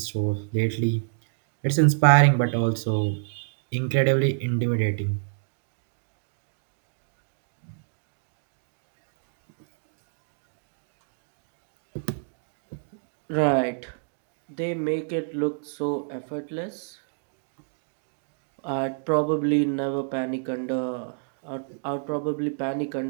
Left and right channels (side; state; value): left; silent; digital silence